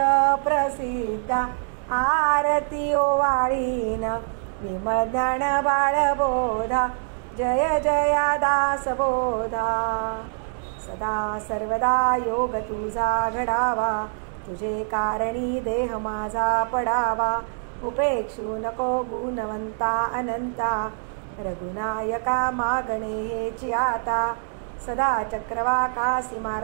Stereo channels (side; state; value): left; silent; 62 dB below the other